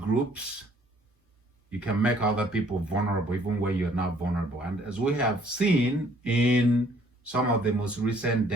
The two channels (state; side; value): normal; both; correlation 0.61